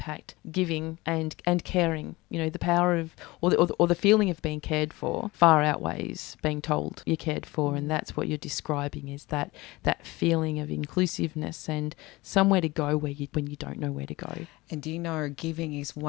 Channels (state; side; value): quieter; right; 21.5 dB